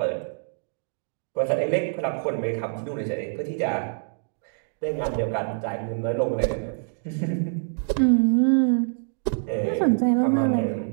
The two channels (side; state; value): left; silent; digital silence